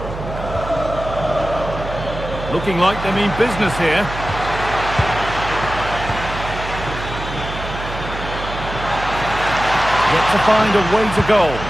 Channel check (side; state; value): right; noise; hum, 9 dB below the sound